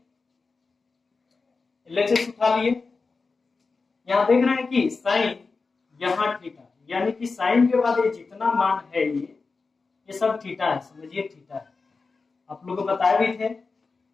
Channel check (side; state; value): right; quieter; 4.3 dB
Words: LHS उठा लिए। यहाँ देख रहे हैं कि साइन यहाँ थीटा, यानी कि साइन के बाद ये जितना मान है ये सब थीटा है, समझिए थीटा है। आप लोग को बताए भी थे